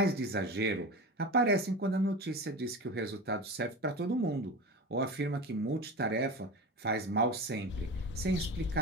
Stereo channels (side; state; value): both; normal; correlation 0.28